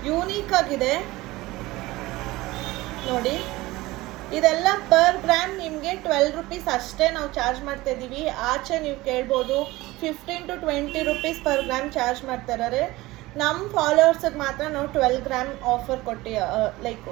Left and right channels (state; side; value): quieter; left; 19.3 dB